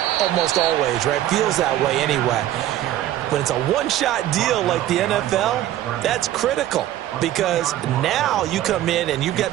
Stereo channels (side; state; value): left; quieter; 13.2 dB